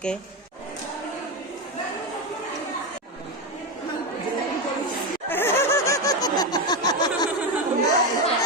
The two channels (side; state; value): both; normal; correlation 0.12